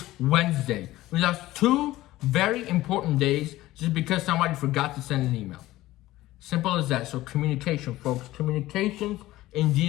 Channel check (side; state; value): right; quieter; 16.6 dB